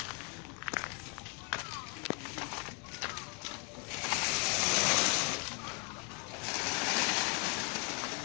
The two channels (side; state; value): right; quieter; 35.4 dB